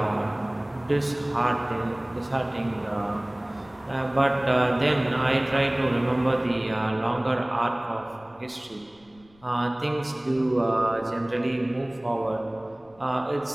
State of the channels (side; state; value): left; noise; rumble, 30 dB below the sound